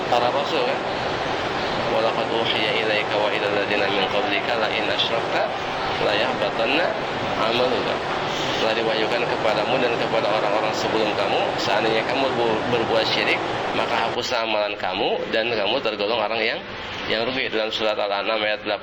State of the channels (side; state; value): both; identical; correlation 1.00